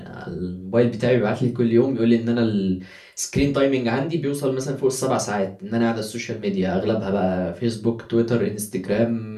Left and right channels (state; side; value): identical; both; correlation 1.00